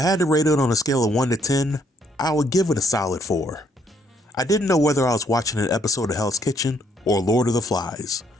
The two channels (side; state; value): both; normal; correlation 0.70